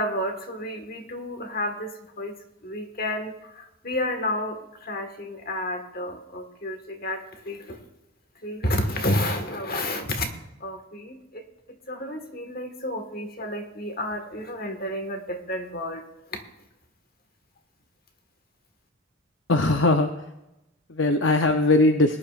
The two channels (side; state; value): both; normal; correlation 0.22